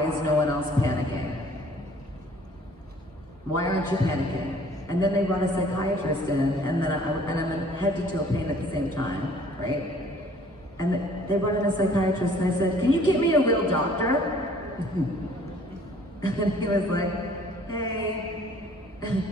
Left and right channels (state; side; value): normal; both; correlation 0.55